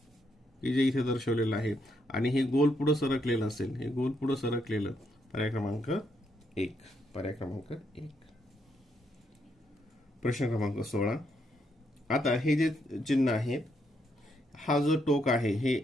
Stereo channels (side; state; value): both; normal; correlation 0.77